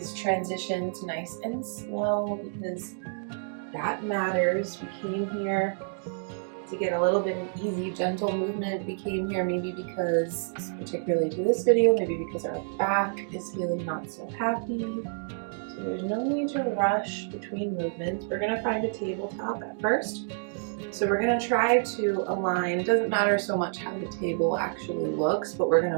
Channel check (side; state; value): left; silent; digital silence